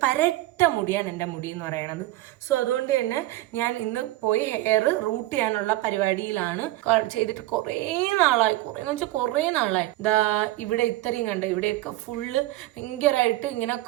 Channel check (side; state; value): left; quieter; 17.1 dB